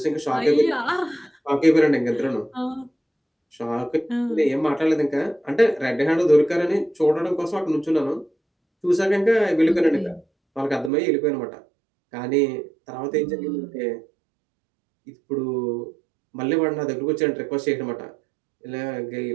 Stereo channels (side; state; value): left; drops out; at 10.9 s